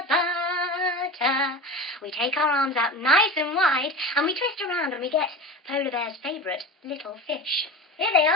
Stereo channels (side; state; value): both; normal; correlation 0.30